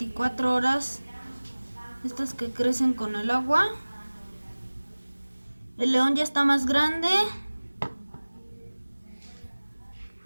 horas, estos que crecen con el agua. El león ya está más grande.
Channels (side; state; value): both; inverted; correlation -1.00